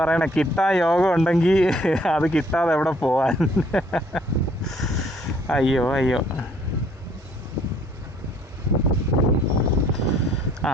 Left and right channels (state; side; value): normal; both; correlation 0.61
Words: പറയണേ, കിട്ടാൻ യോഗം ഉണ്ടെങ്കിൽ അത് കിട്ടാതെ എവിടെ പോവാൻ. അയ്യോ അയ്യോ.